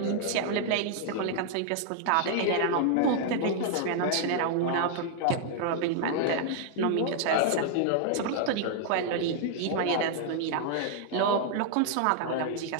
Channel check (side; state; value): both; different; correlation 0.00